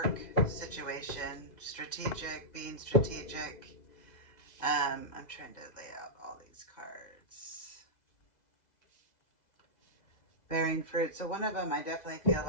situation, strategic, being strategic. I'm trying to lay out all these cards. Bearing fruit. So one of them I definitely feel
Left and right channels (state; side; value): late; right; 2.0 ms